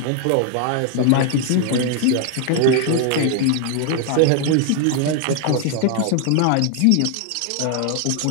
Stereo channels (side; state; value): both; different; correlation 0.00